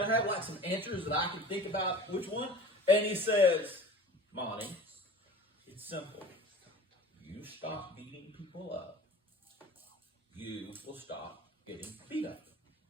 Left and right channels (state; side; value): normal; both; correlation 0.41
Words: I have like some answers that I can think about which one? And he says, Monty, it's simple. You stop beating people up, you will stop getting beat up.